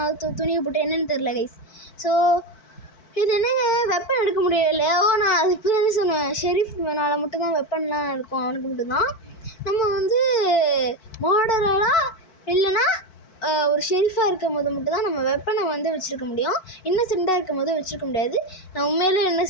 துணியை போட்டு, என்னன்னு தெரில கைஸ். ஸோ இது என்னங்க, வெப்பன் எடுக்க முடியல. நான் அது இப்போ தானே சொன்னேன், ஷெரீஃப் மேனால் மட்டும்தான் வெப்பன்லாம் இருக்கும், அவனுக்கு மட்டும்தான். நம்ம வந்து மர்டரராக இல்லைன்னா ஒரு ஷெரீஃபாக இருக்கும் போது மட்டும்தான் நம்ம வெப்பனை வந்து வச்சுருக்க முடியும். இன்னசென்ட்டாக இருக்கும் போது வச்சுருக்க முடியாது. நான் உண்மையிலே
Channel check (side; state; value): right; late; 4.5 ms